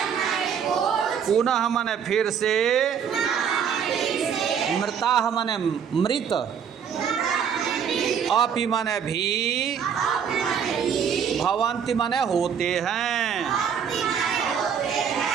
पुनः माने फिर से, मृताः माने मृत, अपि माने भी, भवन्ति माने होते हैं,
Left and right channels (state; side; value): quieter; left; 7.5 dB